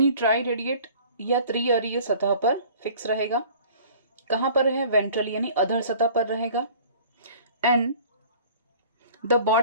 ट्राई रेडिएट या त्रिअरीय सतह पर फिक्स रहेगा। कहां पर है, वेंट्रल यानी अधर सतह पर रहेगा। And the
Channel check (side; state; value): both; inverted; correlation -0.48